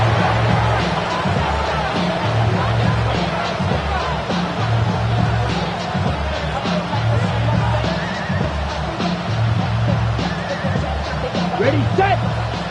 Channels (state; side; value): identical; both; correlation 1.00